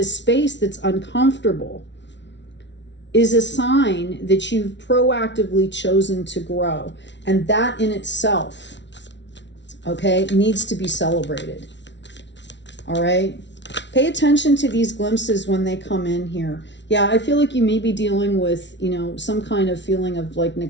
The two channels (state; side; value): late; right; 0.51 ms